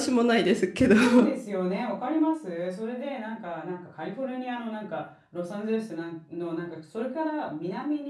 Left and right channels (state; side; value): identical; both; correlation 1.00